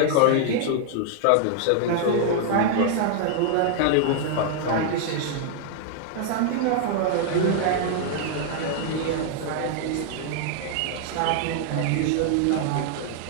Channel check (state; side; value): different; both; correlation -0.01